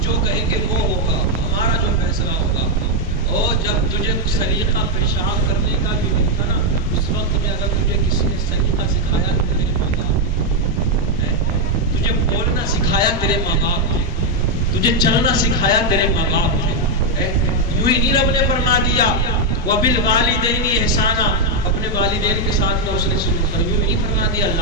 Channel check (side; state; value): both; normal; correlation 0.01